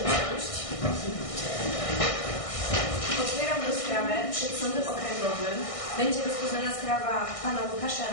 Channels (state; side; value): late; right; 1.6 ms